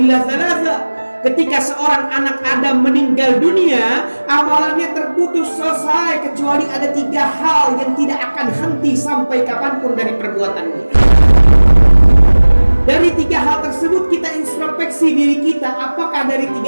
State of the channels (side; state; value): both; inverted; correlation -1.00